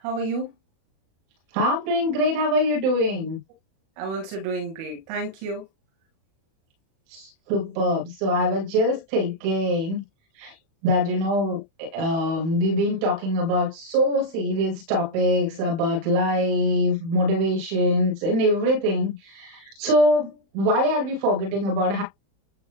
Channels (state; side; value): late; left; 37 ms